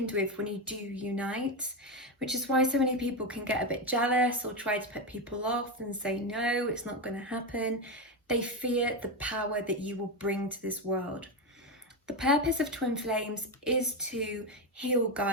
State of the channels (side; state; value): both; normal; correlation 0.12